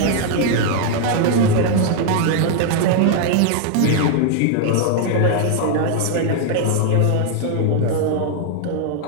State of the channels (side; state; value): both; different; correlation 0.00